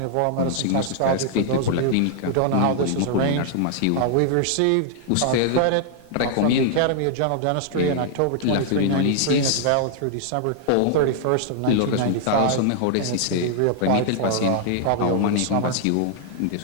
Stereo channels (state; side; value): different; both; correlation -0.01